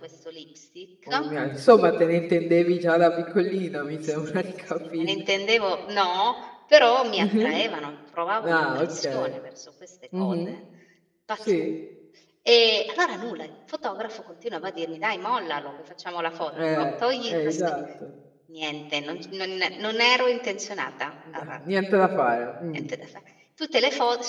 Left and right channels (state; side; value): identical; both; correlation 1.00